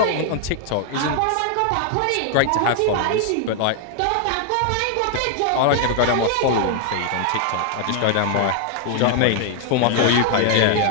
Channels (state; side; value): different; both; correlation 0.00